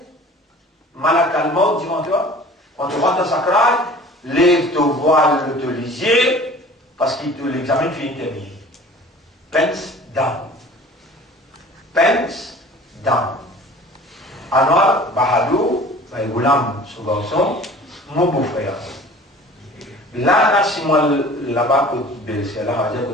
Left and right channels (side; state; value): both; normal; correlation 0.45